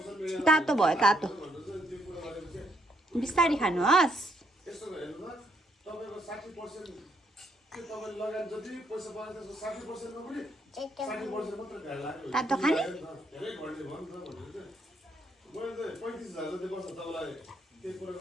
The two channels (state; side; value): normal; both; correlation 0.73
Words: तातो भयो तातो बिस्तारी खानुहोस् तातो खाने